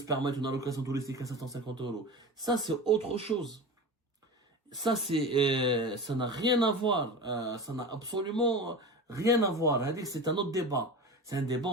permettre une allocation touristique à 750 euros? Ça, c'est autre chose. Ça, ça n'a rien à voir. Ça n'a absolument rien à voir. C'est un autre débat. C'est un débat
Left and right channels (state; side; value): normal; both; correlation 0.30